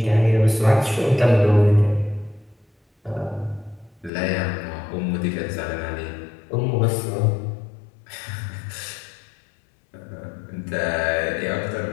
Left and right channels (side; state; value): right; drops out; at 4.1 s